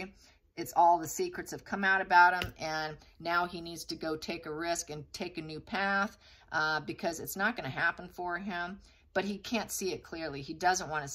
It's all the secrets have come out about him, and now he needs to go take a risk and take a new path because it's not going to happen for him, but he can't see it clearly. He doesn't want to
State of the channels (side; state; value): both; identical; correlation 1.00